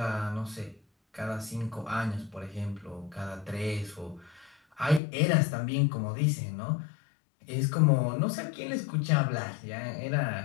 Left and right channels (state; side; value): drops out; right; at 5.0 s